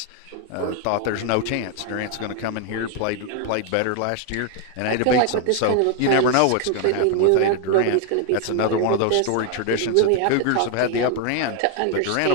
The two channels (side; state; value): both; different; correlation 0.00